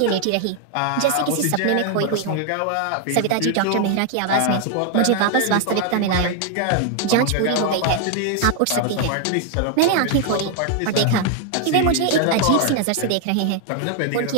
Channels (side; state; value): both; different; correlation 0.00